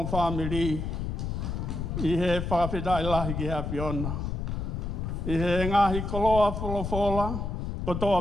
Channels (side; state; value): left; noise; rumble, 3 dB below the sound